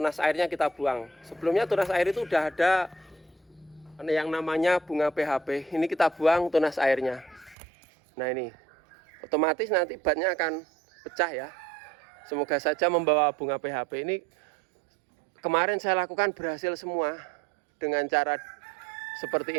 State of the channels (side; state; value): left; drops out; at 7.6 s